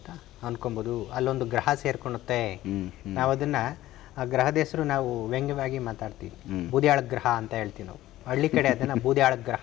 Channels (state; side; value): quieter; right; 15.3 dB